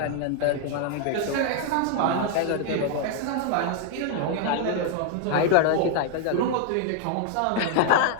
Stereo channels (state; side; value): different; both; correlation 0.00